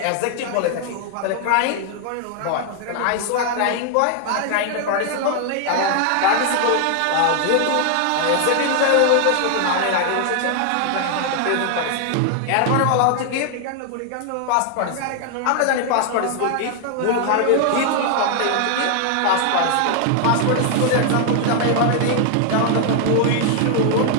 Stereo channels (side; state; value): both; different; correlation 0.00